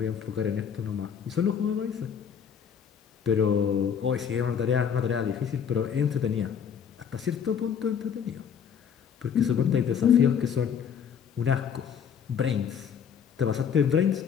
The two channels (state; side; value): quieter; right; 7.6 dB